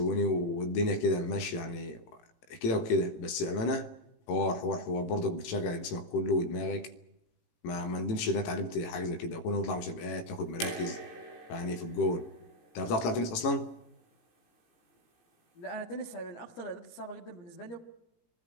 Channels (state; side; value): late; right; 18 ms